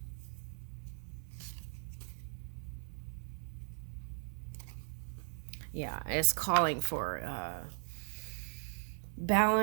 Yeah, it's calling for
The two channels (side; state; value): left; silent; 52 dB below the other